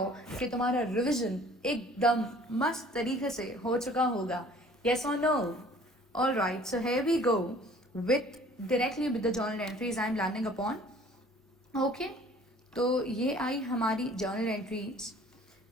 कि तुम्हारा रिविजन एकदम मस्त तरीके से हो चुका होगा। Yes or no? All right, so here we go with directly with the journal entries I am landing upon. Okay, तो ये आई हमारी journal entries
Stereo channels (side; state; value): both; normal; correlation 0.52